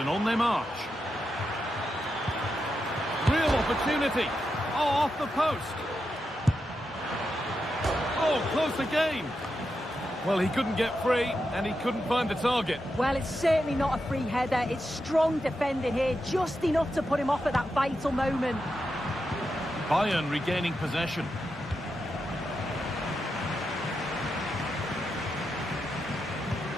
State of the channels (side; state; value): both; normal; correlation 0.87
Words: on they march. Real opportunity. Oh, off the post. Oh, close again. Well, he couldn't get free and he couldn't find the target. Well, it's certainly not a free header. It's strong defending here, just enough to put him off at that vital moment. Bayern regaining possession.